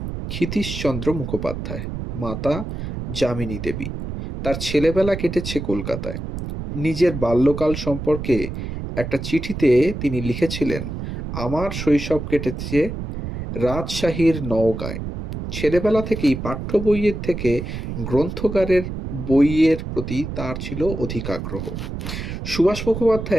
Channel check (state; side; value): noise; right; rumble, 6 dB below the sound